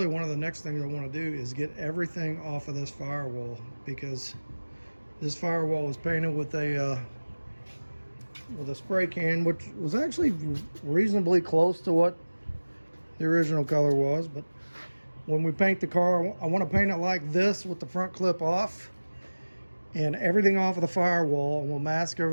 one of the next things I want to do is get everything off of this firewall, because this firewall was painted with a spray can, which was actually reasonably close to what the original color was. But when we paint the car, I want to paint it like this with the front clip off and everything off of the firewall, and we'll mask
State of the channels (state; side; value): inverted; both; correlation -1.00